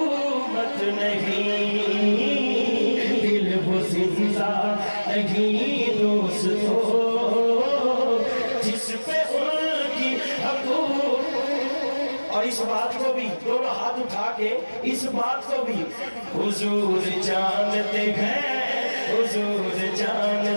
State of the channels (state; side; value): inverted; both; correlation -1.00